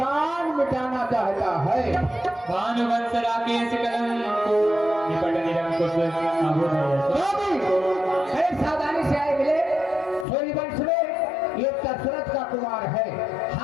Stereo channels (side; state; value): right; drops out; at 10.2 s